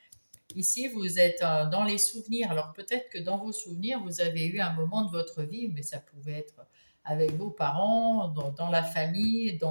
Ici, vous êtes dans les souvenirs. Alors, peut-être que dans vos souvenirs, vous avez eu un moment de votre vie, mais ça pouvait être avec vos parents, dans la famille,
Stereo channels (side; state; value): both; inverted; correlation -1.00